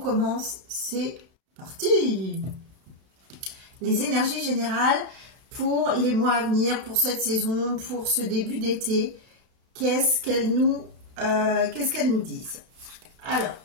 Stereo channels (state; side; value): late; left; 31 ms